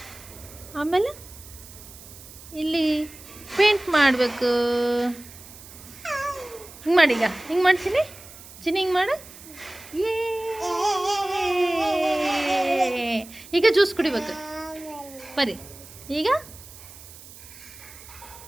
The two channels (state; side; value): noise; right; hiss, 18 dB below the sound